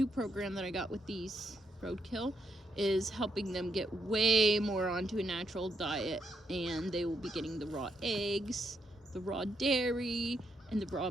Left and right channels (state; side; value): normal; both; correlation 0.78